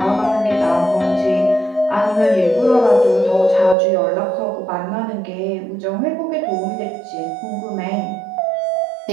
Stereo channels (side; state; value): left; drops out; at 3.8 s